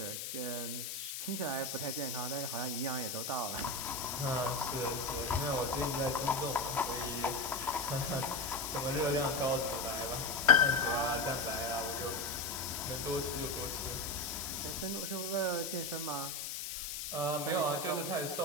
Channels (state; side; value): noise; left; hiss, 5 dB below the sound